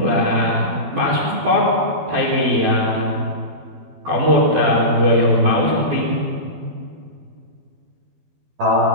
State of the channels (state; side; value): late; left; 12 ms